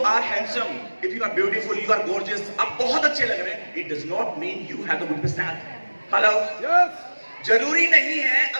are handsome, if you are beautiful, you are gorgeous, आप बहुत अच्छे लग रहे हैं, it does not mean you have a good personality. Hello, जरूरी नहीं है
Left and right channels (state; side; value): inverted; both; correlation -1.00